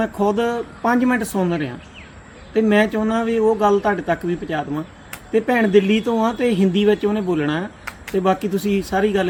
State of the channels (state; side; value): identical; both; correlation 1.00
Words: ਖੁਦ 5 ਮਿੰਟ ਸੁਣ ਰਿਹਾ ਤੇ ਮੈਂ ਚਾਹੁੰਦਾ ਵੀ ਉਹ ਗੱਲ ਤੁਹਾਡੇ ਤੱਕ ਵੀ ਪਹੁੰਚਾ ਦੇਵਾਂ। ਤੇ ਭੈਣ ਦਿੱਲੀ ਤੋਂ ਆ ਤੇ ਹਿੰਦੀ ਵਿੱਚ ਉਹਨੇ ਬੋਲਣਾ ਤੇ ਬਾਕੀ ਤੁਸੀਂ ਸਾਰੀ